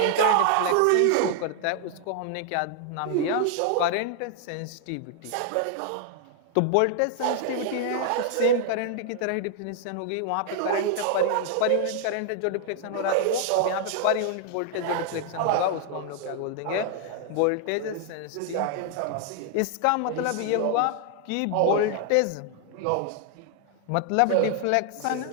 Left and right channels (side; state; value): both; different; correlation 0.00